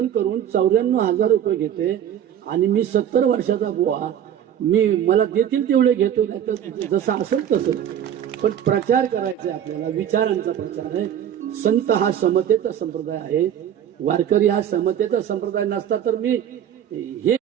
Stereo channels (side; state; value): left; quieter; 9.8 dB